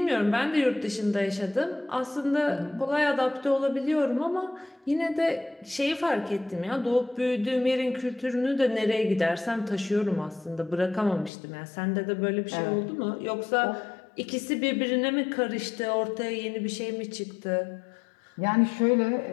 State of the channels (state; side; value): drops out; right; at 11.3 s